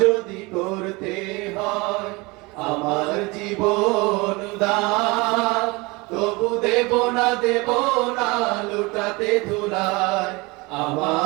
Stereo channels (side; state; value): left; quieter; 25.1 dB